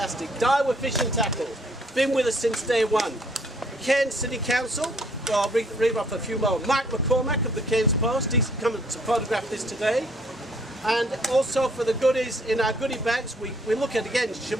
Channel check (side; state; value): both; normal; correlation 0.63